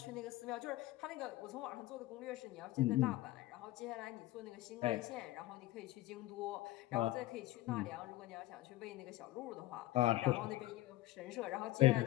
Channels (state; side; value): quieter; right; 16.9 dB